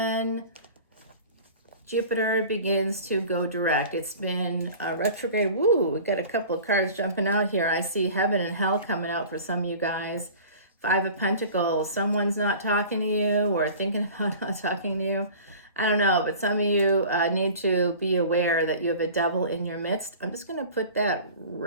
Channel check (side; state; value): both; inverted; correlation -0.42